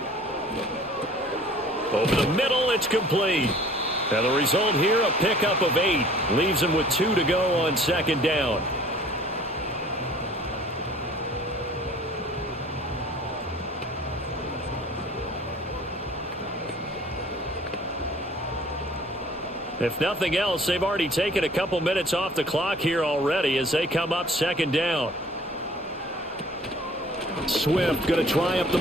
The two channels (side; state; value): both; normal; correlation 0.51